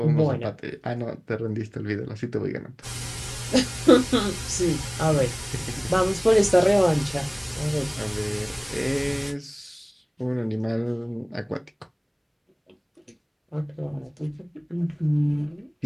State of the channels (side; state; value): both; identical; correlation 1.00